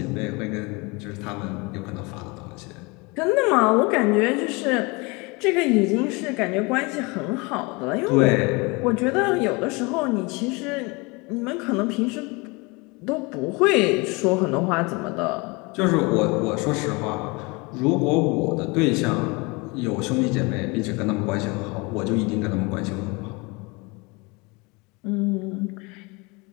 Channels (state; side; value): quieter; right; 27.0 dB